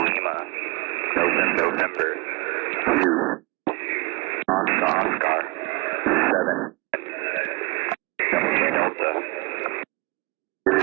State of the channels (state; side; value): quieter; left; 26.9 dB